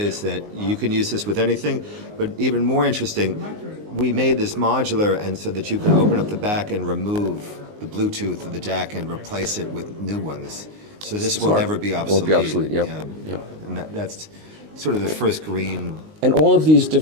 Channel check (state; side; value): late; left; 19 ms